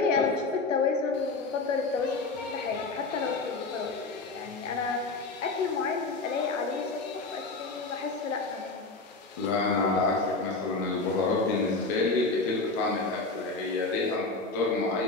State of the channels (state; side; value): quieter; right; 3.7 dB